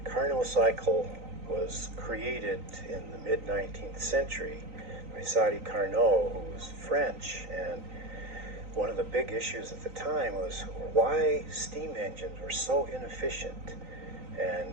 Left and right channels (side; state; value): left; late; 3.9 ms